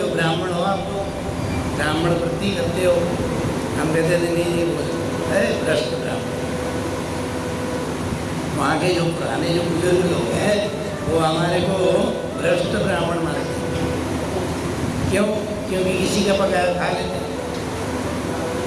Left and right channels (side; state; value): both; identical; correlation 1.00